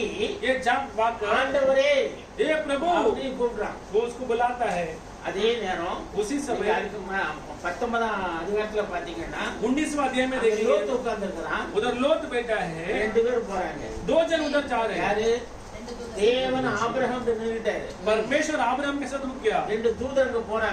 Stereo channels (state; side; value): identical; both; correlation 1.00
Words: ये जाग वाकर ஆண்டவரே ये प्रभु அப்படி கூப்பிடுறான்। वो उसको बुलाता है। அதே நேரம் उसी समय அதுக்கு 19ஆம் அதிகாரத்துல பாத்தீங்கன்னா 19वां अध्याय में அங்க देखिए லோத்து உட்கார்ந்து இருக்கிறான், उधर लोत बैठा है, 2 பேர் போறாங்க, 2 जन उधर जा रहे हैं। யாரு? தேவன் ஆபிரகாம் நின்னுட்டாரு, परमेश्वर अब्राहम के साथ रुक गया, 2 தூதர்கள்